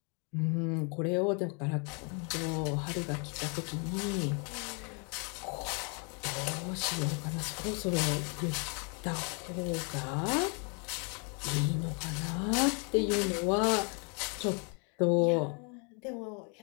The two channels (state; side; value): quieter; right; 35.9 dB